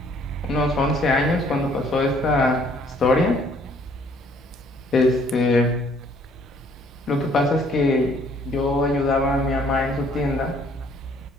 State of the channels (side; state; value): both; normal; correlation 0.62